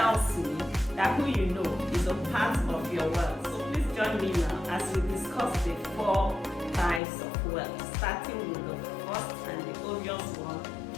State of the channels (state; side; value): drops out; right; at 7.0 s